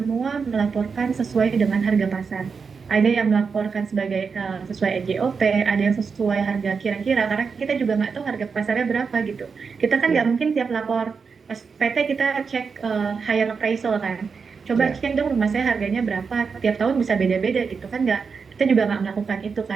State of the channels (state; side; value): quieter; left; 5.4 dB